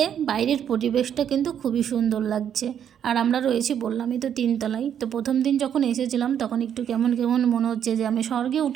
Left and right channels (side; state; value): left; quieter; 9.1 dB